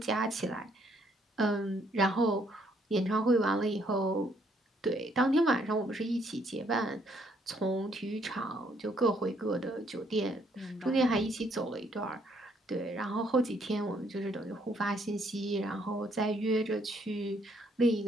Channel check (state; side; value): normal; both; correlation 0.69